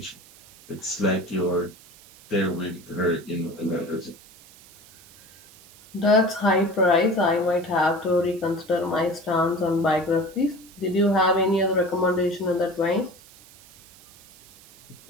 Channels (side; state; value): right; noise; hiss, 24 dB below the sound